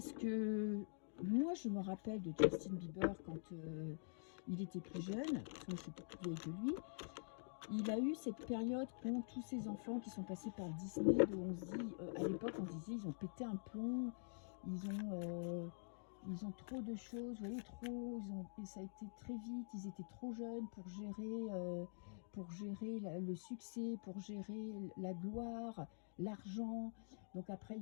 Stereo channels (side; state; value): right; silent; digital silence